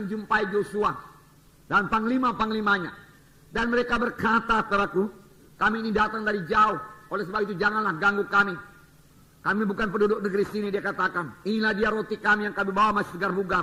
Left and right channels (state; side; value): identical; both; correlation 1.00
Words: Joshua dan panglima-panglimanya. Dan mereka berkata, saudaraku, kami ini datang dari jauh. Oleh sebab itu janganlah ganggu kami. Kami bukan penduduk negeri sini, dia katakan. Inilah dia roti kami yang kami bawa masih